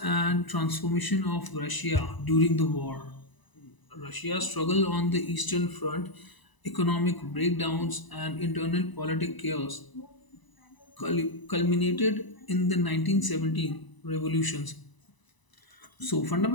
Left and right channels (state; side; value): late; right; 1.0 ms